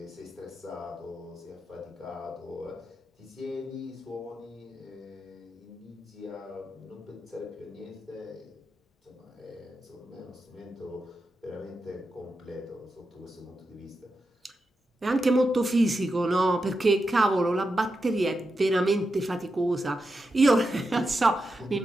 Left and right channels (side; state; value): both; normal; correlation 0.88